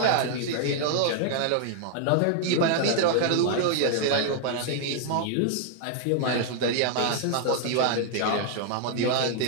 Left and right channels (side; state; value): both; different; correlation 0.00